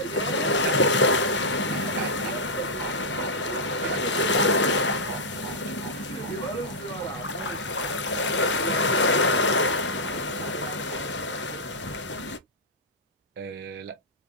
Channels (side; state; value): both; normal; correlation -0.11